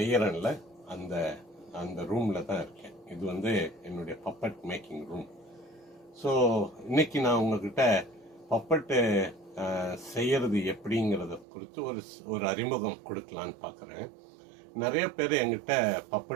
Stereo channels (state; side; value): drops out; left; at 11.5 s